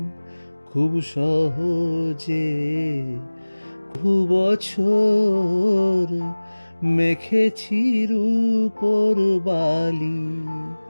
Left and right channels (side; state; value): both; inverted; correlation -1.00